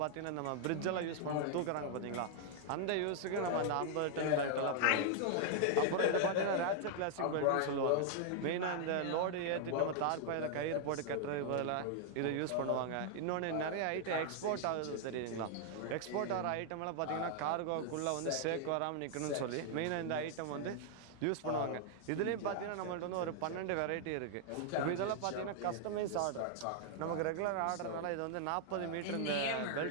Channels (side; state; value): both; different; correlation -0.01